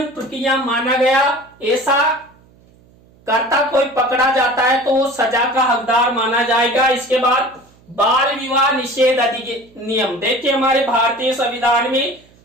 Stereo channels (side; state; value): right; noise; hum, 29 dB below the sound